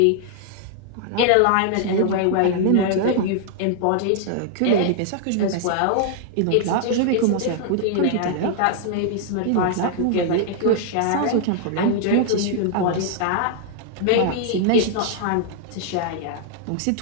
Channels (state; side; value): different; both; correlation -0.01